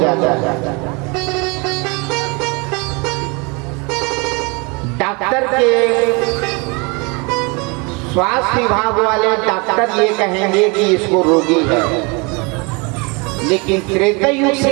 है। डॉक्टर के स्वास्थ्य विभाग वाले डॉक्टर ये कहेंगे कि इसको रोगी है, लेकिन त्रेता युग से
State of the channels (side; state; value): left; quieter; 29.4 dB